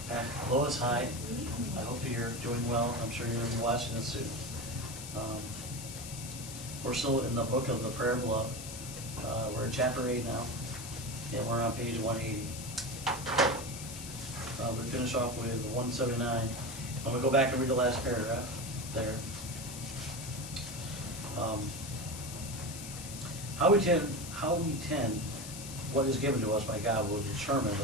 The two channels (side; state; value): left; noise; hiss, 10 dB below the sound